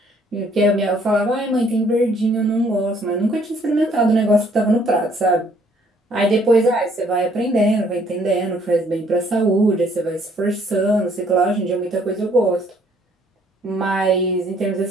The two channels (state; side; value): normal; both; correlation 0.63